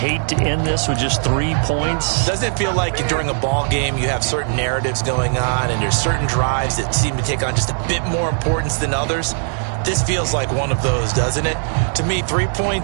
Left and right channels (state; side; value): silent; left; digital silence